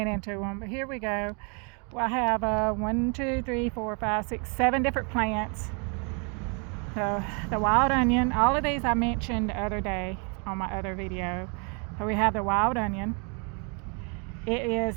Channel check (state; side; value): quieter; left; 36.0 dB